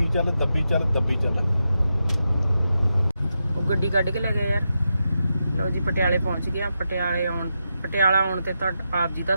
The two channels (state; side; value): inverted; both; correlation -0.87